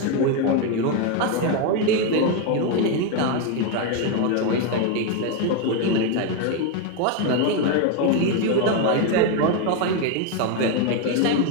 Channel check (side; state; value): both; different; correlation 0.02